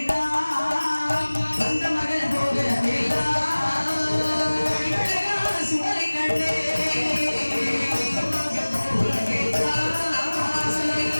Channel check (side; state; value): both; inverted; correlation -1.00